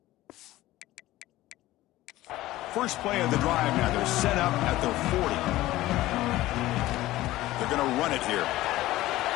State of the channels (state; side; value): quieter; right; 16.5 dB